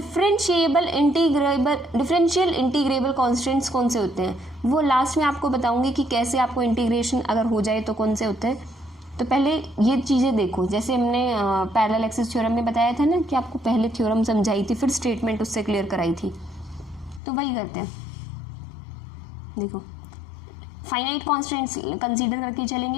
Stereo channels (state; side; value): drops out; right; at 17.2 s